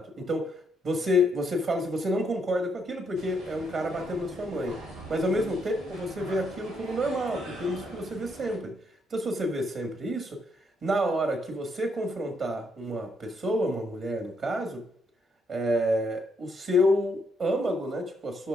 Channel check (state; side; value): normal; both; correlation 0.75